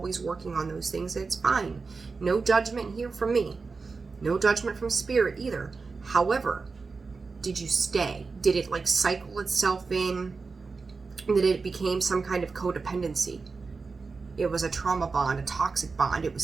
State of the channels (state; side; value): quieter; left; 4.4 dB